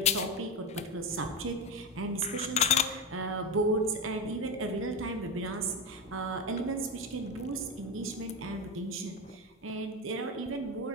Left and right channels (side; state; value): both; normal; correlation 0.16